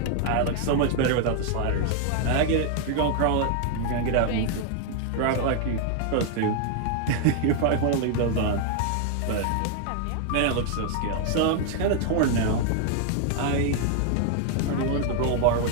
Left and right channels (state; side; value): different; both; correlation 0.00